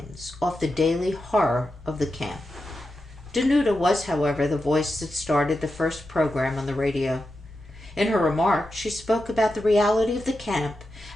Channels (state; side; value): normal; both; correlation 0.89